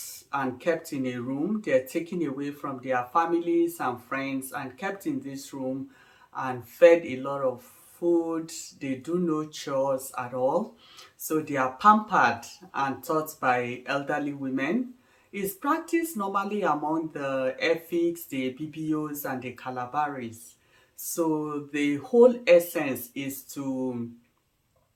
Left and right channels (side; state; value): both; identical; correlation 1.00